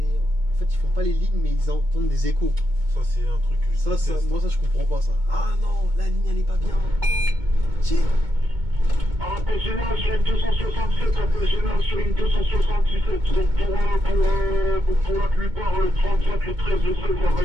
En fait, ils font pas les lignes, mais ils entendent des échos. Ça, c'est un truc que je déteste. Moi, ça, je comprends pas ça. Ah non, la ligne, elle est pas bien. Tiens. Appel général sur une 267, appel général sur une 277. Donc pour la plupart, le 35, le 13, le 16, ça va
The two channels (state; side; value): late; left; 2.2 ms